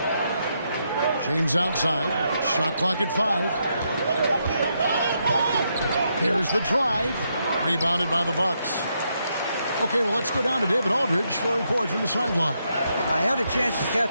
James outside. Shot clock at 5. Here's the drive. Rebounded by the Bucks. Okay, well, let's go down to David Aldridge for a report from the sideline. I had a chance to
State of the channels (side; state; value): both; inverted; correlation -0.79